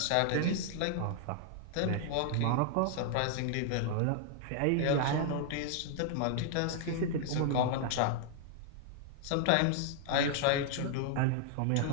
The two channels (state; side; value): different; both; correlation 0.00